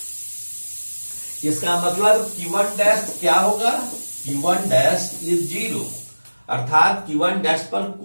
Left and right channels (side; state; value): both; inverted; correlation -1.00